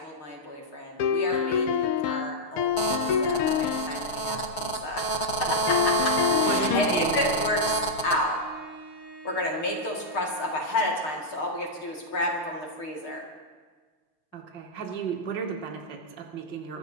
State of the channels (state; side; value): late; right; 6.5 ms